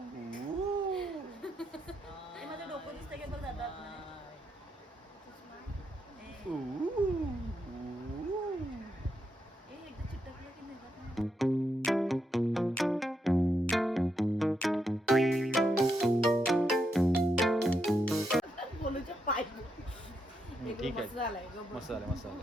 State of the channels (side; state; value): both; normal; correlation 0.81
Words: माझं डोकं दिसतं की बघ जातात. एकदा चिटकलं की नाही. बोलूच्या पाय ठीक आहे. मस्त झालाय. मस्त झालं मस्त झालं.